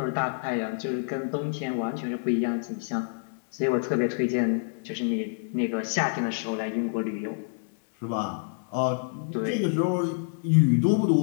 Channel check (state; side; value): silent; right; digital silence